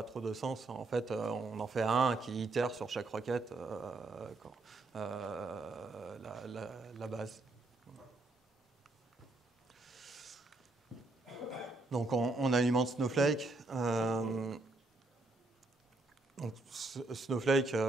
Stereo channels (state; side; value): quieter; left; 3.1 dB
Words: trop de sens. En fait, on en fait un qui itère sur chaque requête la base. Donc on alimente Snowflake. Donc, Snowflake,